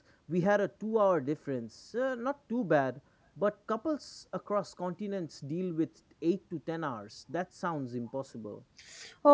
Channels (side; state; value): both; identical; correlation 1.00